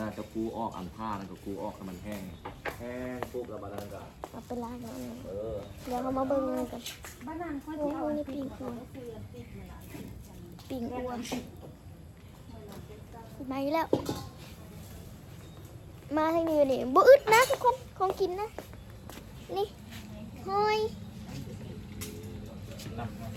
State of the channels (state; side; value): identical; both; correlation 1.00